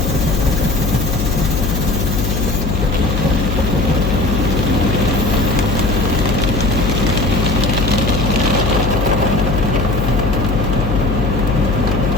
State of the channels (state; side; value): noise; left; hum, 1 dB below the sound